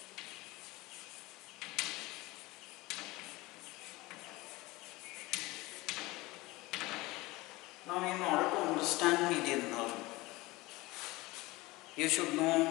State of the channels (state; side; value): quieter; right; 21.1 dB